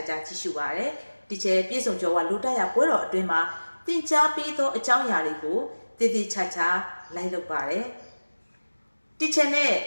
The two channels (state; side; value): inverted; both; correlation -1.00